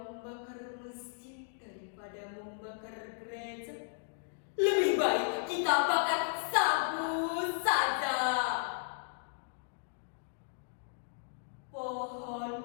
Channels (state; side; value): silent; right; digital silence